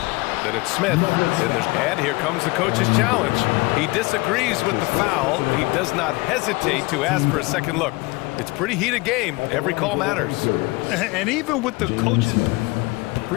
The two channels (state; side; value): quieter; right; 23.8 dB